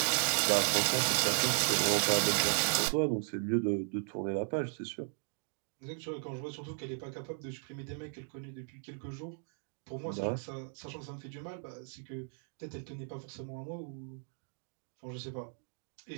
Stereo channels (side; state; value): left; silent; 54 dB below the other